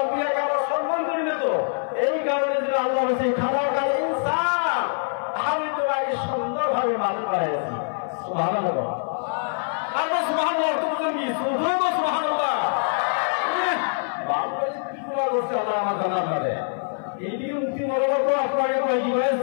আমরা সম্মান করি না তো, এই কারণে যদি আল্লাহ বলছে খানা খাই ইনসান, আমি তোমাকে সুন্দরভাবে মানুষ বানিয়েছি। সুবহানাল্লাহ। আর সুবহানাল্লাহ অর্থ বুঝেন কি? শুধুই তো সুবহানাল্লাহ। আল্লাহ আমার জান্নাত দেয়। এইদিকে মুক্তি বলবো তো আপনাকে কয় কি ভাই,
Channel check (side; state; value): right; silent; 57 dB below the other